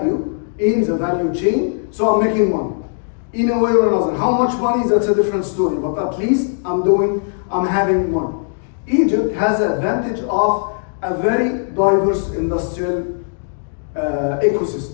in the value chain, so I'm making money. In a way or another. How much money, that's a different story, but at least I'm having money. Egypt has the advantage of a very diverse industrial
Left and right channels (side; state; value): right; silent; digital silence